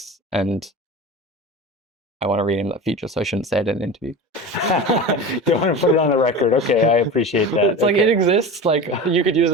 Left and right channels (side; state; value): both; normal; correlation 0.30